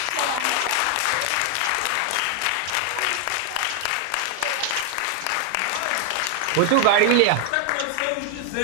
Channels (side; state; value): both; different; correlation 0.00